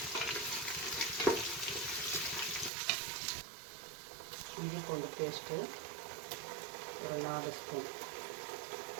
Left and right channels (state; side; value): drops out; left; at 2.7 s